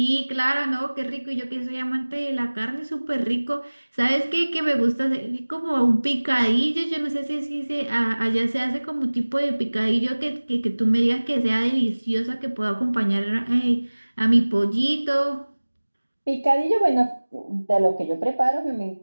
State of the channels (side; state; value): both; inverted; correlation -1.00